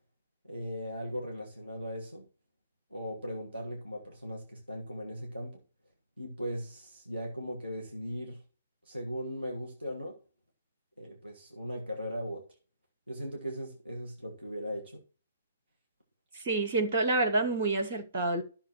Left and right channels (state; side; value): inverted; both; correlation -0.60